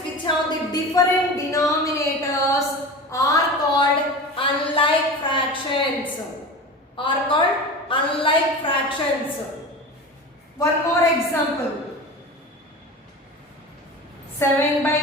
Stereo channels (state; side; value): normal; both; correlation 0.32